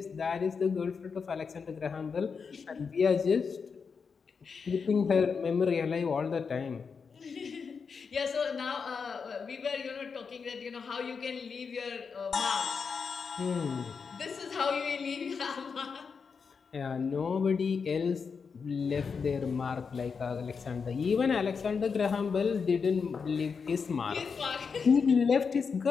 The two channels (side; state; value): right; quieter; 5.6 dB